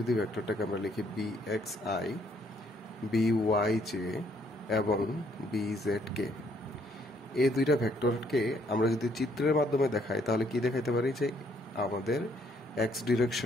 ভেক্টরটাকে আমরা লিখি B x I B Y J এবং বি জেড কে। এই দুইটা ভেক্টরকে আমরা যদি চিত্রের মাধ্যমে দেখাই তাহলে কি দেখাইতে পারি যে আমাদের এক্স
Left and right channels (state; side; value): normal; both; correlation 0.67